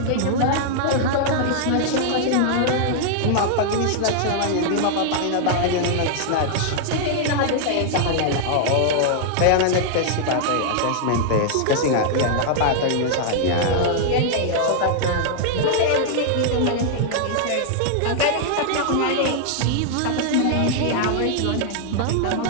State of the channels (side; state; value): both; different; correlation -0.01